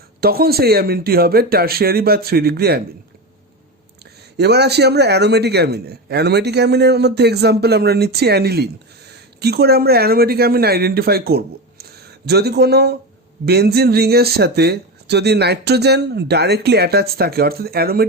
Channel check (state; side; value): normal; both; correlation 0.20